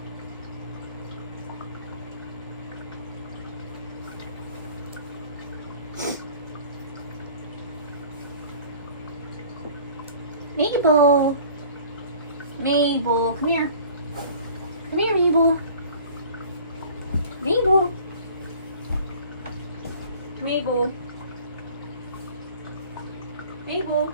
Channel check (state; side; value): inverted; both; correlation -0.48